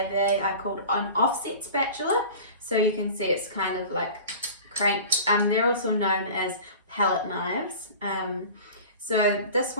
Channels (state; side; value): inverted; both; correlation -0.38